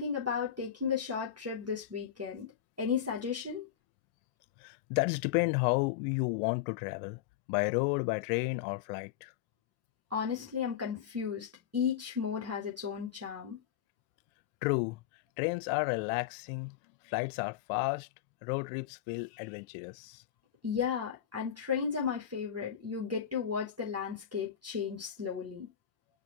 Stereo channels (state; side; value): quieter; right; 10.4 dB